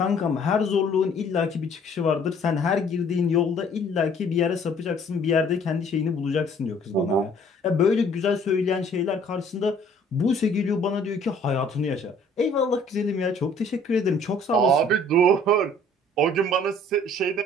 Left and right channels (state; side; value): normal; both; correlation 0.56